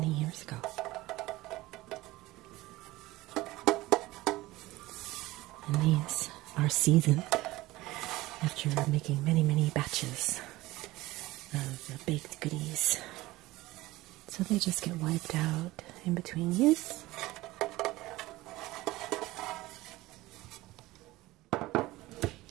years ago. And these are seasoned after making many, many batches of the baked goodies. So they just get wiped out in between use.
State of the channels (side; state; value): left; quieter; 18.8 dB